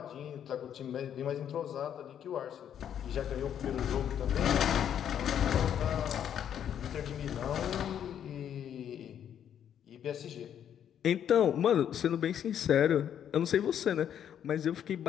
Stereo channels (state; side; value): quieter; right; 9.4 dB